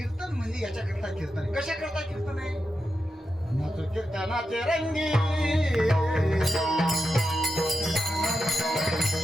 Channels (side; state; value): both; normal; correlation 0.88